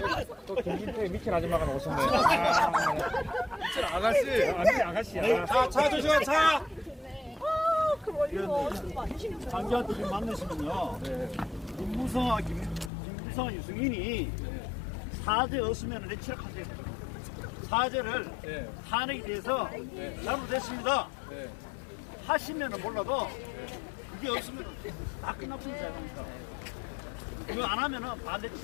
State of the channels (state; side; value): drops out; right; at 12.9 s